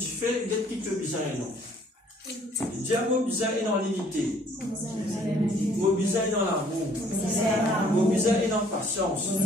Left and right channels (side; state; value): both; normal; correlation 0.60